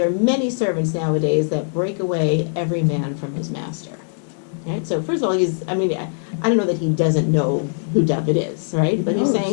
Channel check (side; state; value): right; silent; digital silence